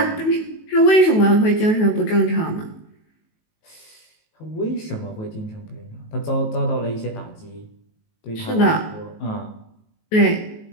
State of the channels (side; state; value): right; late; 19 ms